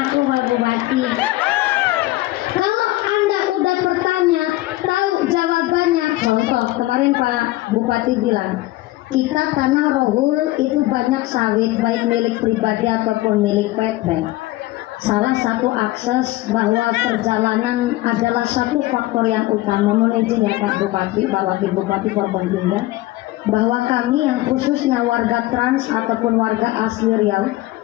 Pak Bupati. Kalau Anda udah bertanya, tahu jawabannya. Contoh, kemarin Pak Bupati bilang, kita tanah Rohul itu banyak sawit, baik milik pribadi ataupun milik PT. Salah satu akses bahwa perjalanan adalah satu faktor yang utama. Mohon izin ya Pak Bupati, Pak Wakil Bupati Forboninda, bahwa kami yang khususnya warga trans ataupun warga asli Riau,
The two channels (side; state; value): right; quieter; 17.8 dB